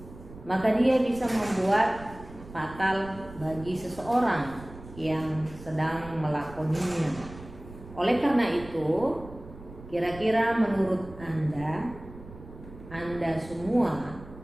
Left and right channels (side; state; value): right; noise; rumble, 17 dB below the sound